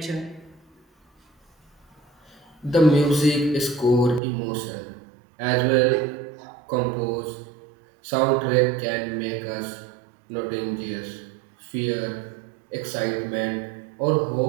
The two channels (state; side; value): drops out; left; at 4.2 s